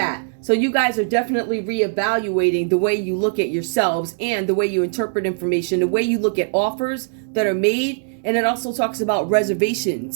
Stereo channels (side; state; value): left; silent; digital silence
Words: So you guys are definitely reevaluating the way you look at yourselves and the way you interpret information, the way you look at offers that are made. And it also talks about